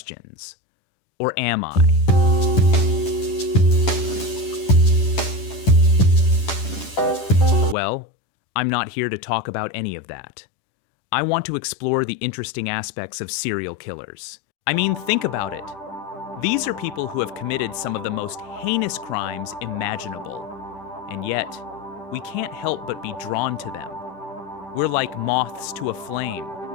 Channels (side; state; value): right; late; 10 ms